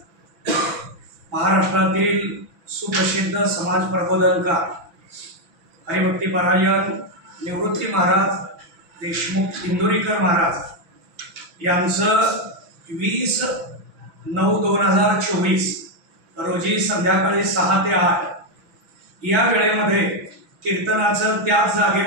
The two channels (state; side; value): late; left; 6.0 ms